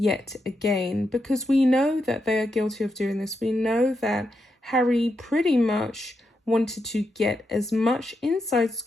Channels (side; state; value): both; normal; correlation 0.84